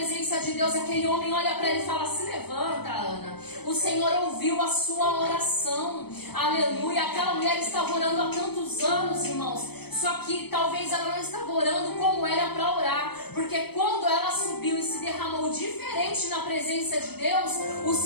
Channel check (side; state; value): right; late; 0.97 ms